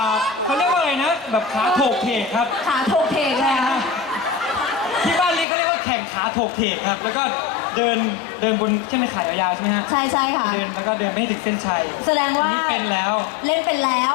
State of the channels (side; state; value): right; drops out; at 5.5 s